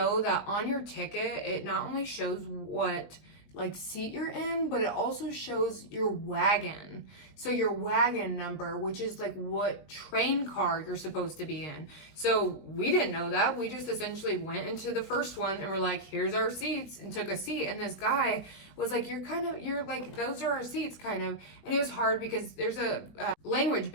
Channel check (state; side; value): late; right; 20 ms